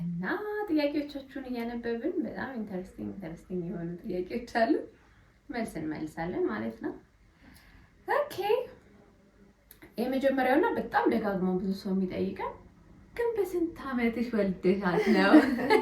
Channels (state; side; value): identical; both; correlation 1.00